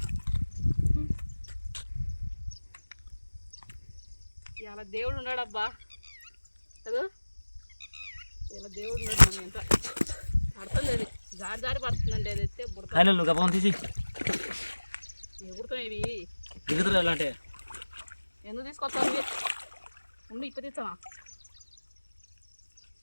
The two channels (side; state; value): both; inverted; correlation -1.00